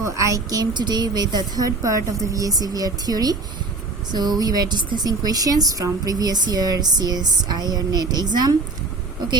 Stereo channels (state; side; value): quieter; left; 3.5 dB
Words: I came today with the third part of the VSEPR theory. So we were discussing questions from previous year CSIR NET exam.